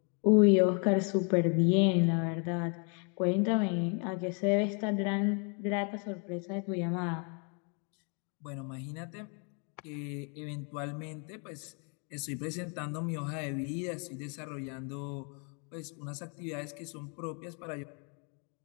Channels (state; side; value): quieter; right; 38.3 dB